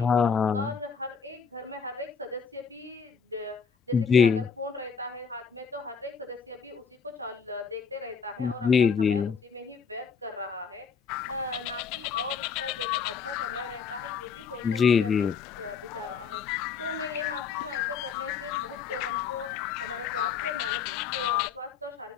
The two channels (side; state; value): right; quieter; 6.2 dB